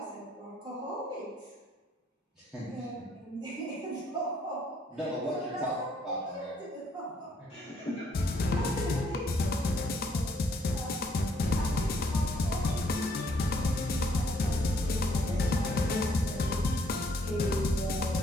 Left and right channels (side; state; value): both; normal; correlation 0.68